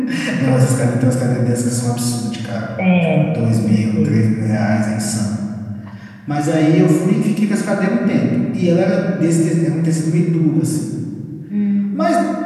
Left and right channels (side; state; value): both; identical; correlation 1.00